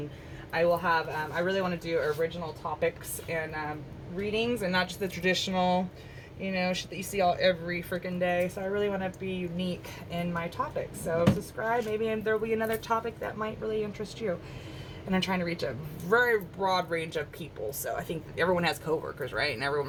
I will have, I really want to do original topics and readings, and not just the traditional, you know, shit that you see every freaking day. So I really want to be unique in my topics. So subscribe. Maybe there'll be another topic that might really interest you. And I'm trying to reach a very broad range of people. So I think everyone has coworkers, right? And everyone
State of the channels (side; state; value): both; identical; correlation 1.00